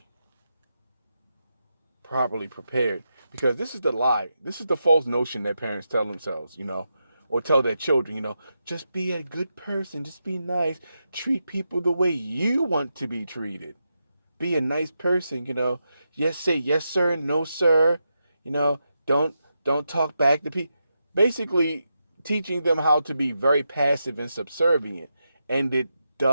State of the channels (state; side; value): inverted; both; correlation -0.86